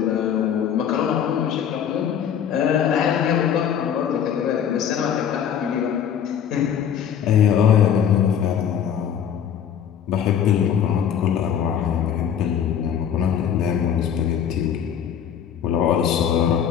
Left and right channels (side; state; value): right; quieter; 8.7 dB